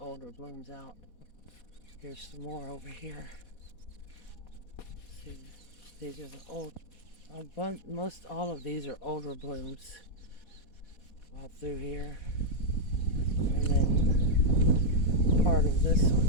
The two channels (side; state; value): right; late; 4.1 ms